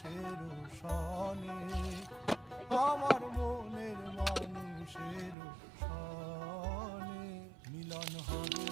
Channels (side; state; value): left; drops out; at 5.4 s